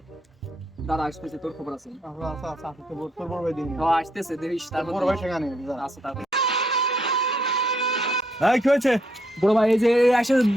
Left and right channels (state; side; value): normal; both; correlation 0.74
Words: দাঁড়া, আসতেছে, তোর খবর আছে? আচ্ছা, তোর বড় ভাই দিন। ও আসতেছে, দেখিস তারপর। বড় ভাই সেখানে আচ্ছা তারপর। এই কি হয়েছে? বড় ভাই এই যে এসে